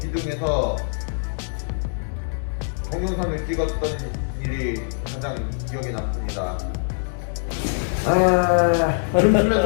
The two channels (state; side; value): silent; right; 63 dB below the other